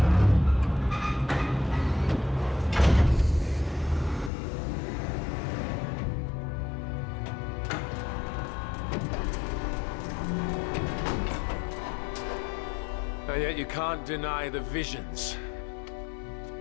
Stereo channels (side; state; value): right; drops out; at 4.3 s